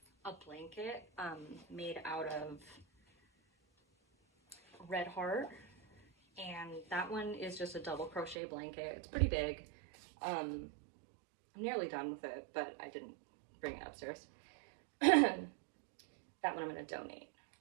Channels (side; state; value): left; drops out; at 8.3 s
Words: a blanket made out of Red Heart, and that one is just a double crochet blanket. It's pretty big. I'm nearly done with it, but I didn't bring it upstairs. That one I'm going to donate.